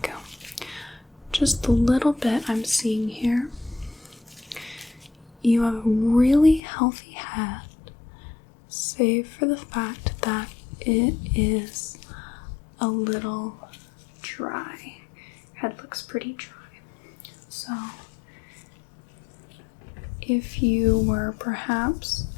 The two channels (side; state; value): right; drops out; at 6.6 s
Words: Just the little bit I'm seeing here, you have a really healthy head, save for the fact that it is a little dry. Head looks pretty dry. So, if you were perhaps